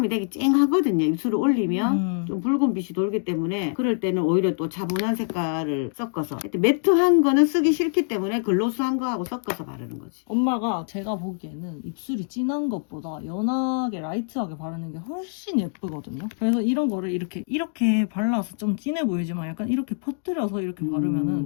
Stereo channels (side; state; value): right; silent; 62 dB below the other